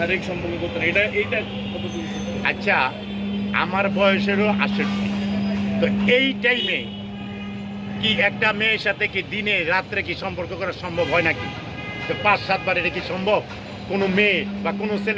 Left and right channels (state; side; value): identical; both; correlation 1.00